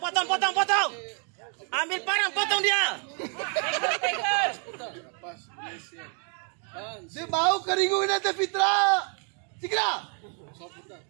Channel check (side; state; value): left; quieter; 39.7 dB